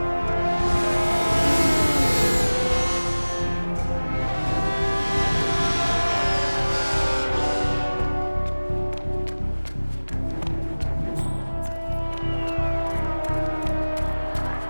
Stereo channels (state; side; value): inverted; both; correlation -1.00